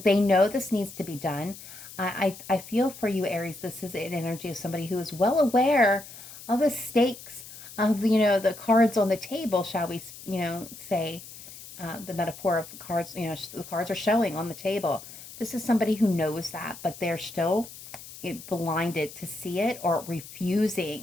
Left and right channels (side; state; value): left; noise; hiss, 15 dB below the sound